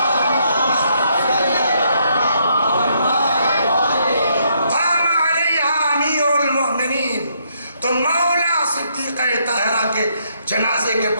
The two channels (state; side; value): inverted; both; correlation -0.73